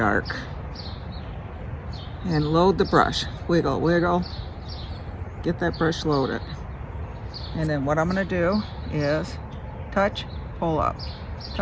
And load the brush. Wiggle, wiggle. get that brush loaded. And then what I'm going to do is touch, pull up,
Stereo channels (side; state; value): both; identical; correlation 1.00